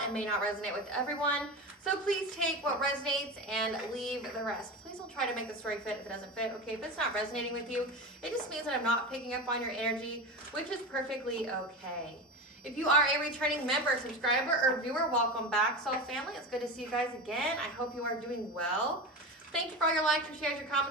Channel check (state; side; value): normal; both; correlation 0.25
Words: and may not resonate with everyone. So please take what resonates and leave the rest. Please don't try to make the story fit if it doesn't fit, okay? If it's not resonating with you, it just means that I'm not picking up on your energy, which is perfectly okay. If you are a returning member, subscriber, or viewer, welcome back, Soul Family. It's good to see you guys again. I hope you are doing well. Thank you for all your likes, your shares, your